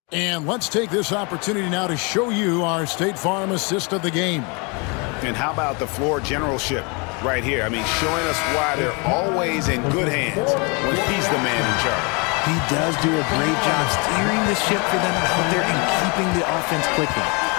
And let's take this opportunity now to show you our State Farm assist of the game. And how about the floor generalship right here? I mean, showing us why they're always in good hands when he's the man in charge. He does do a great job steering the ship for them out there and keeping the offense clicking.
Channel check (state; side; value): quieter; right; 31.3 dB